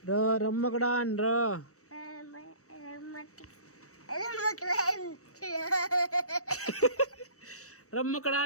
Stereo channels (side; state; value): right; late; 0.65 ms